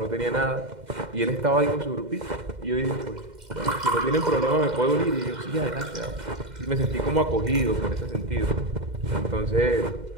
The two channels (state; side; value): late; left; 2.1 ms